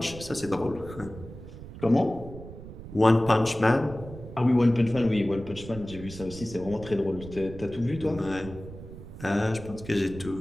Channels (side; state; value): right; noise; rumble, 14 dB below the sound